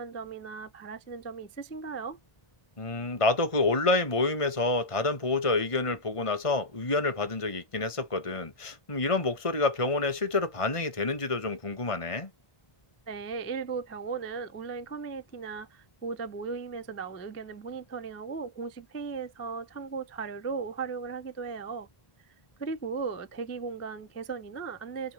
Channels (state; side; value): late; right; 1.5 ms